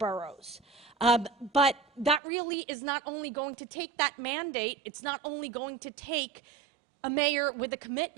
But that really is not only going to take that mandate, it's not only going to take a mayor with a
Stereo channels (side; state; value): left; drops out; at 2.2 s